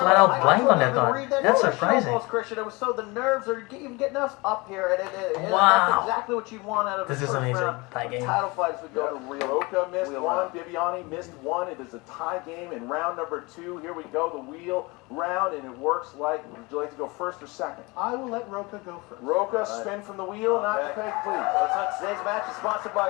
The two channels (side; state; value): right; quieter; 25.3 dB